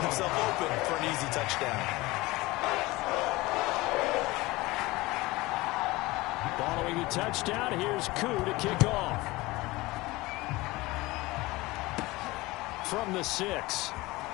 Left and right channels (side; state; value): right; quieter; 20.8 dB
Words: himself open for an easy touchdown. Following the touchdown, here's Koo to kick off. From the 6.